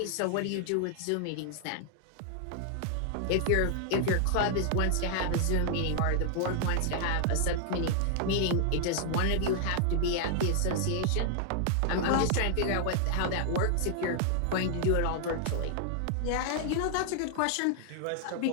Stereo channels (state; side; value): different; both; correlation 0.00